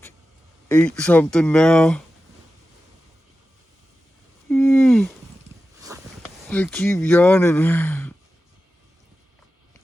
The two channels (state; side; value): normal; both; correlation 0.93